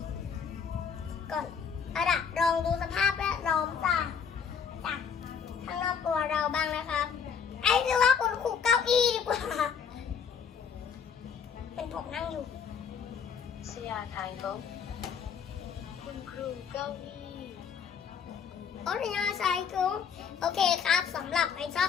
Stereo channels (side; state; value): right; quieter; 6.8 dB